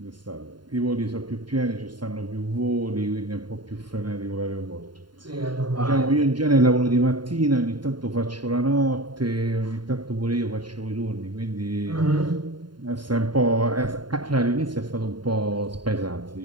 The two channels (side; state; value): left; late; 0.71 ms